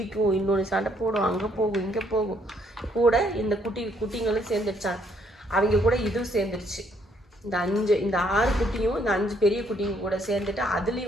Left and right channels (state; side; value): normal; both; correlation 0.68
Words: இன்னொன்று சண்டை போடும், அங்கே போகும் இங்கே போகும். கூட இந்த குட்டிங்களும் சேர்ந்துருச்சான். அவங்க கூட இதுவும் சேர்ந்துருச்சு. இந்த 6 குட்டியும் இந்த 5 பெரிய குட்டிங்க கூட சேர்ந்துட்டு